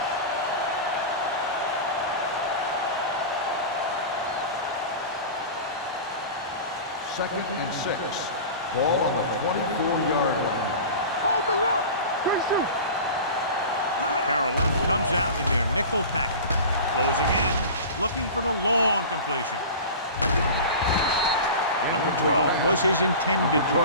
Second and 6. Ball on the 24-yard line. Hold the look. Good shoot. Carolina comes out in their nickel package. Closing in, looking for the long completion. Number 12 was his intended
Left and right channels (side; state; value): both; inverted; correlation -0.33